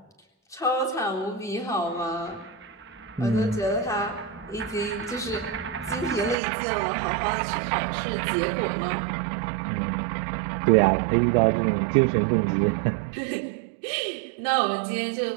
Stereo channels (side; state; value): left; drops out; at 6.4 s